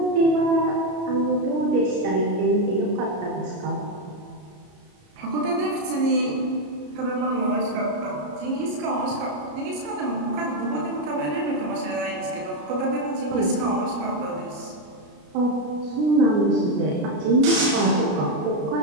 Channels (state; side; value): late; left; 33 ms